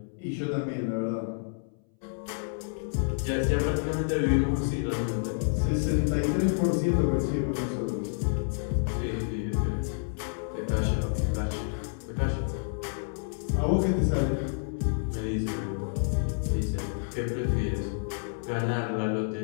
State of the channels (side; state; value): right; silent; 59 dB below the other